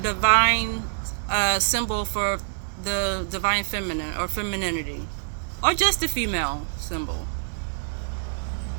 symbol for the divine feminine or femininity, or just the female symbol.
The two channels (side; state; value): left; silent; digital silence